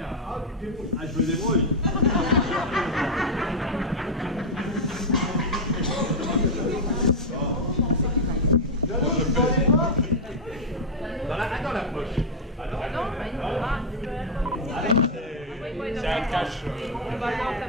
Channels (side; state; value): both; normal; correlation 0.01